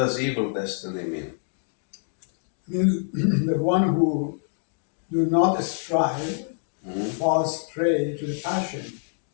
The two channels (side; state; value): right; silent; 61 dB below the other